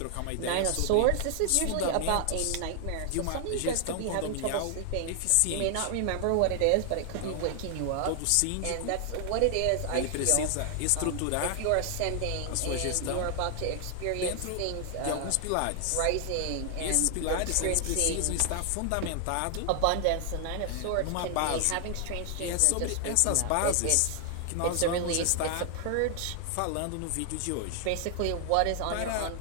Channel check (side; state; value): both; different; correlation 0.00